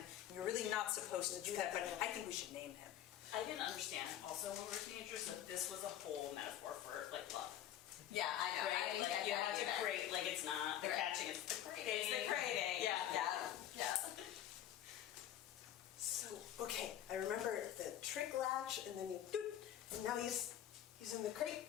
you're really not supposed to do that, but I think we should name him. I didn't understand also when we were teenagers that this was a whole metaphor for, like, love. Yeah, I know. I Right? didn't Like, get you that have to either. crate, like, it's not the Right. catching, it's the crating. It's the crating. Yeah. So, okay, I remember the trick latch, and then you doot, and now you He's in the crate,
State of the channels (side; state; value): right; quieter; 11.4 dB